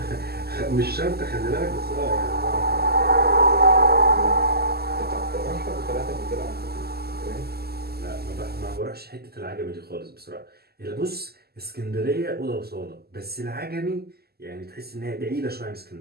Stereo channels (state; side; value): late; left; 0.46 ms